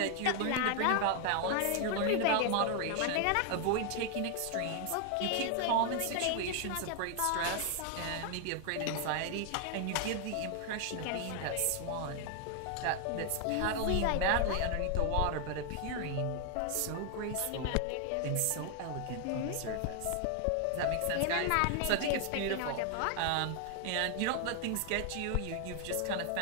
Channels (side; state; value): both; different; correlation 0.00